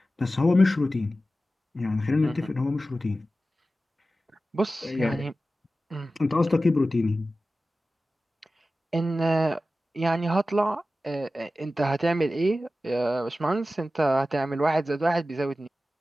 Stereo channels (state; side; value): normal; both; correlation 0.94